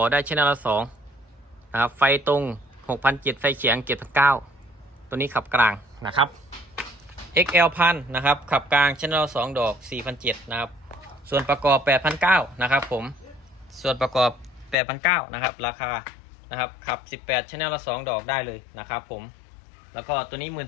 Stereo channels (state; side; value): drops out; right; at 14.8 s